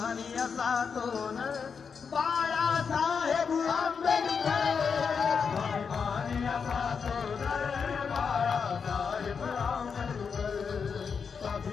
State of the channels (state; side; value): quieter; right; 6.0 dB